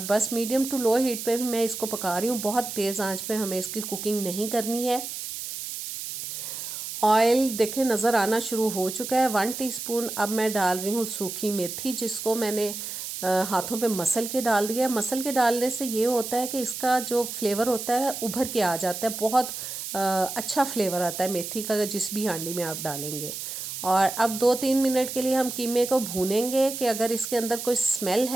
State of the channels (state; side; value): noise; right; hiss, 7 dB below the sound